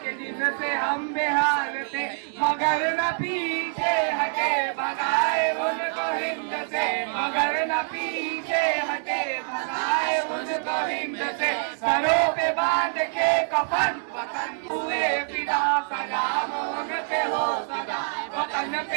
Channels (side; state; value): left; silent; 61 dB below the other